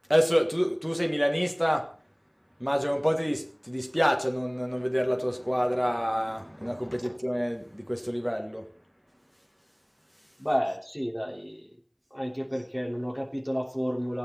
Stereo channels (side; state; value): both; identical; correlation 1.00